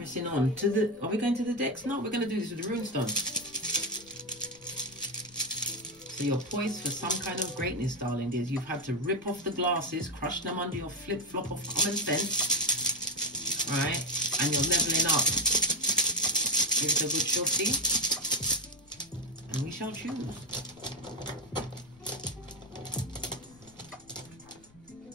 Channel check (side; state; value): left; noise; rumble, 27 dB below the sound